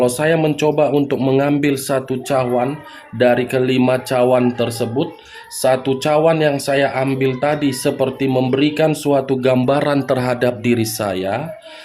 saya mencoba untuk mengambil satu cawan dari ke-5 cawan tersebut, satu cawan yang saya ambil tadi seperti memberikan suatu gambaran terhadap diri saya.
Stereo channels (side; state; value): both; identical; correlation 1.00